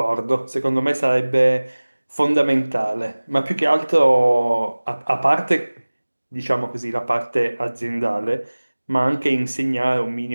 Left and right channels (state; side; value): inverted; both; correlation -1.00